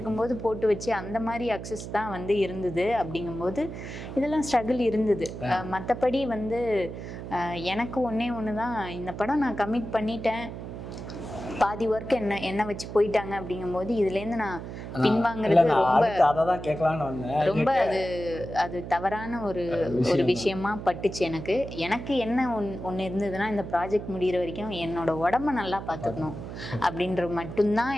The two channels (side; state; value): right; noise; hum, 9 dB below the sound